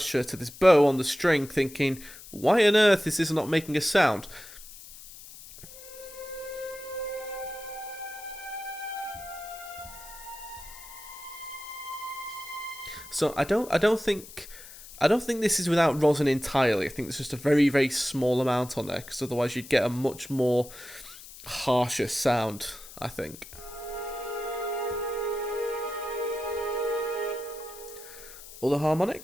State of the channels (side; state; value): left; noise; hiss, 17 dB below the sound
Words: to this bow on the string, thinking, why on earth is this not making a sound? So I don't think this is without rosin entirely. I think there's just a very small amount on there because otherwise you'd get a much more harsher sound, I think. All the